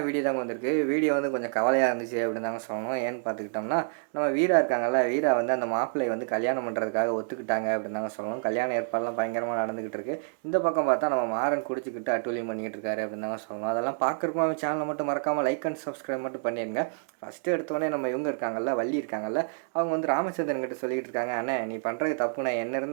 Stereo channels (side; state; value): left; silent; digital silence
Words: வீடியோ தாங்க வந்திருக்கு. வீடியோ வந்து கொஞ்சம் கவலையாக இருந்துச்சு அப்படின்னு தாங்க சொல்லணும். ஏன்னு பார்த்துக்கிட்டோம்னா, நம்ம வீரா இருக்காங்கல்ல, வீரா வந்து அந்த மாப்பிள்ளைய வந்து கல்யாணம் பண்ணுறதுக்காக ஒத்துக்கிட்டாங்க அப்படின்னு தாங்க சொல்லணும். கல்யாண ஏற்பாடுலாம் பயங்கரமாக நடந்துக்கிட்டு இருக்கு. இந்த பக்கம் பார்த்தா நம்ம மாறன் குடிச்சிக்கிட்டு அட்டூழியம் பண்ணிக்கிட்டு இருக்காரு அப்படின்னு தாங்க சொல்லணும். அதெல்லாம் பார்க்குறப்போ நம்ம சேனலை மட்டும் மறக்காமல் லைக் அண்ட் சப்ஸ்கிரைப் மட்டும் பண்ணிடுங்க. ஃபஸ்ட்டு எடுத்தோடனே நம்ம இவங்க இருக்காங்கல்ல, வள்ளி இருக்காங்கல்ல, அவங்க வந்து ராமச்சந்திரன் கிட்ட சொல்லிக்கிட்டு இருக்காங்க, அண்ணே நீ பண்ணுறது தப்புண்ணே, என்ன